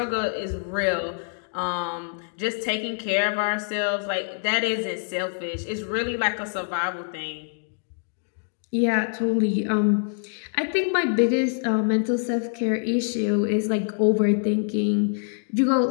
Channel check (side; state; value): right; silent; digital silence